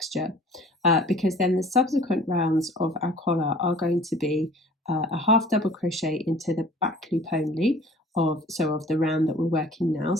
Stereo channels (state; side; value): normal; both; correlation 0.49